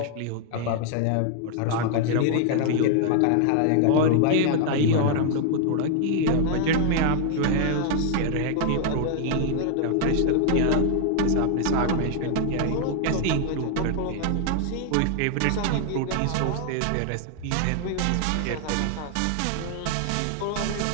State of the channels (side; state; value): both; different; correlation 0.00